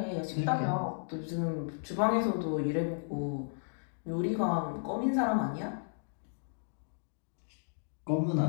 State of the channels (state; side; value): silent; right; digital silence